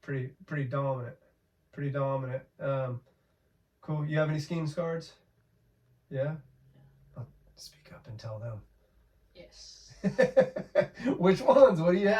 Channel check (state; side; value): identical; both; correlation 1.00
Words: pretty dominant. Cool. You have any Skeens cards? Yeah? I'll speak up and tell them. Yes. Which ones? What do you